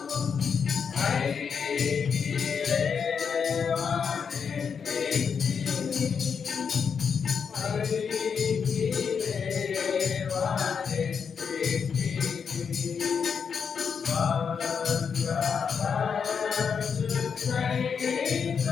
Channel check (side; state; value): right; quieter; 6.4 dB